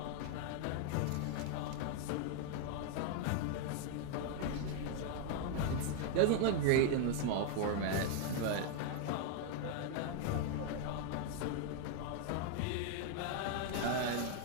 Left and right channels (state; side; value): different; both; correlation 0.00